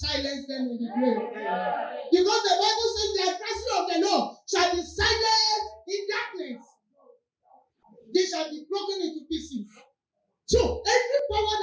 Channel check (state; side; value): identical; both; correlation 1.00